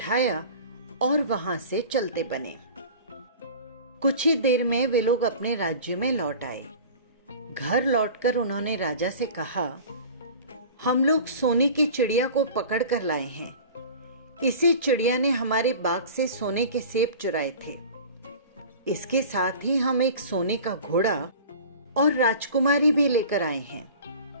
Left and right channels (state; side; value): inverted; both; correlation -0.39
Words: और वहां से चलते बने। कुछ ही देर में वे लोग अपने राज्य में लौट आए। घर लौटकर उन्होंने राजा से कहा, हम लोग सोने की चिड़िया को पकड़ कर लाए हैं। इसी चिड़िया ने हमारे बाग से सोने के सेब चुराए थे। इसके साथ ही हम एक सोने का घोड़ा और राजकुमारी भी लेकर आए हैं।